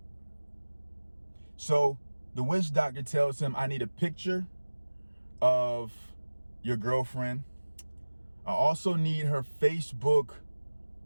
So the witch doctor tells him, I need a picture of your girlfriend, I also need her Facebook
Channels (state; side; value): inverted; both; correlation -1.00